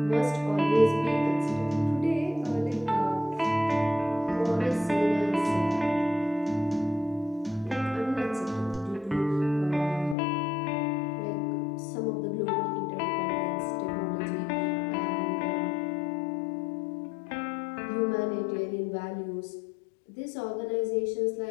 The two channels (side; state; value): right; drops out; at 10.2 s